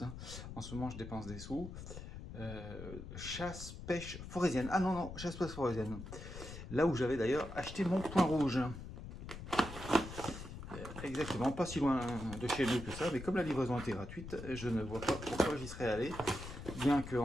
En ce moment, je dépense des sous. Chasse, pêche, forésienne. Ah non, non, chasse, pêche, forésienne. Là où j'avais d'ailleurs acheté mon point rouge. Exactement, pas si loin de chez nous que ça, mais comme la livraison était gratuite, je ne vois pas pourquoi j'y serais allé. Bien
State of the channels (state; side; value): noise; left; rumble, 10 dB below the sound